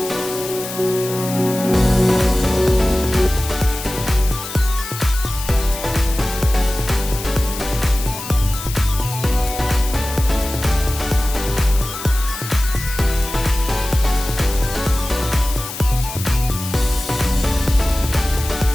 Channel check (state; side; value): noise; left; hiss, 10 dB below the sound